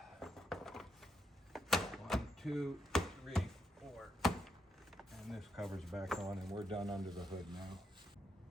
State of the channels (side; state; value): both; normal; correlation 0.80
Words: 1, 2, 3, 4. And this cover's back on and we're done under the hood now.